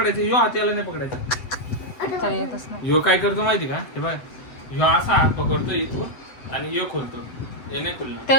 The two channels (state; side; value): late; right; 7.9 ms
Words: ह्यो हात याला नाही पकडायचा. चल येतच नाही. ह्यो काय करतो माहिती का? हे बघ ह्यो असा हात पकडतो इथून आणि ह्यो खोलतो. हे नाही खुलणार.